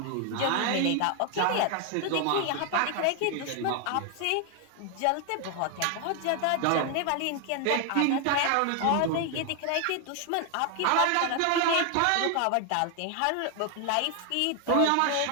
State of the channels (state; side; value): different; both; correlation 0.00